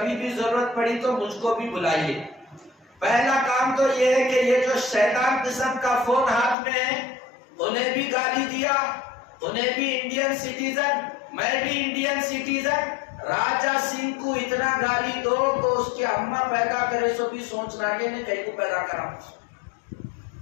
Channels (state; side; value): drops out; right; at 6.6 s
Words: بھی ضرورت پڑی تو مجھ کو بھی بلائیے۔ پہلا کام تو یہ ہے کہ یہ جو شیطان قسم کا فون ہاتھ میں ہے، انہیں بھی گالی دیا، انہیں بھی انڈین سٹیزن، میں بھی انڈین سٹیزن، راجہ سنگھ کو اتنا گالی دو تو اس کی اماں پیدا کرے سو بھی سوچنا کہ نے کہیں کو پیدا کرا۔